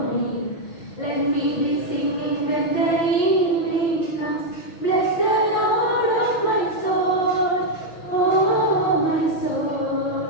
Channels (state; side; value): late; right; 6.1 ms